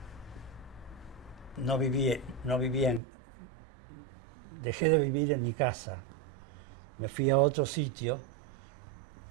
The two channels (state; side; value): drops out; left; at 3.0 s